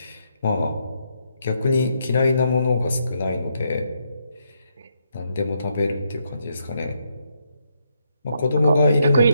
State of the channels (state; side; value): inverted; both; correlation -0.77